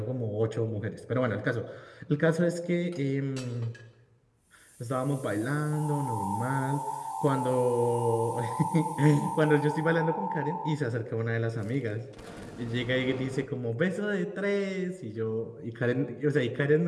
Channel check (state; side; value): identical; both; correlation 1.00